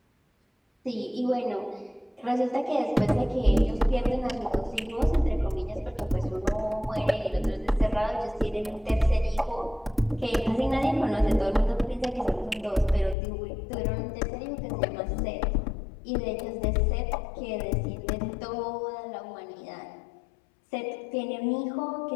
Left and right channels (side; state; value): right; drops out; at 13.2 s